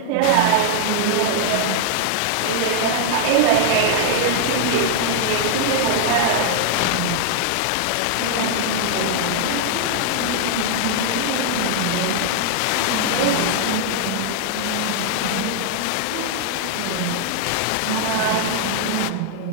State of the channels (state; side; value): different; both; correlation -0.01